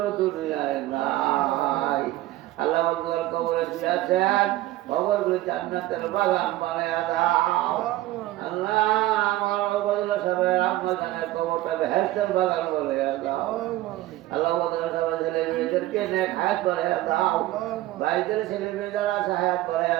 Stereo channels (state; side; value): quieter; left; 16.1 dB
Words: দুনিয়ায় নাই। আল্লাহ বন্ধুর কবরে শুয়েছেন, কবরগুলো জান্নাতের বাগান বানাইয়া দাও। আল্লাহ আমার ওবায়দুল্লাহ সাহেবের আম্মা জানের কবরটা বেহেশতের বাগান বানাইয়া দাও। আল্লাহ ওবায়দুল্লাহ সাহেবের ছেলে মেয়েদেরকে নেক হায়াত বানাইয়া দাও, ভাইদের ছেলে মেয়ে যারা আছে হায়াত